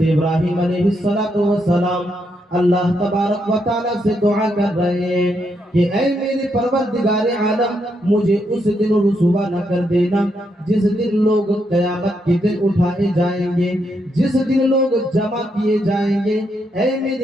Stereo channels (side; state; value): both; normal; correlation 0.79